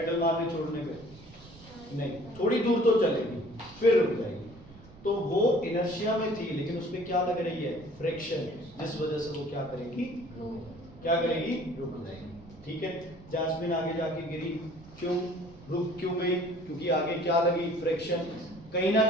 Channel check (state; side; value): noise; right; rumble, 21 dB below the sound